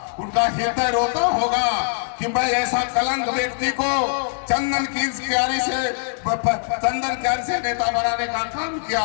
उनका हृदय रोता होगा कि मैं ऐसा कलंक व्यक्ति को चंदन क्यारी से नेता बनाने का काम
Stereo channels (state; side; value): silent; right; digital silence